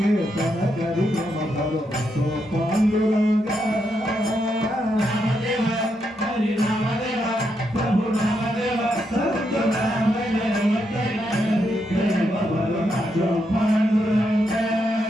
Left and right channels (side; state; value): both; normal; correlation 0.81